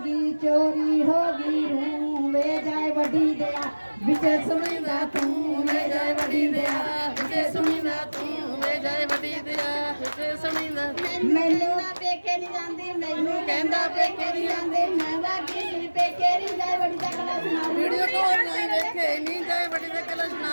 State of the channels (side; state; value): both; inverted; correlation -1.00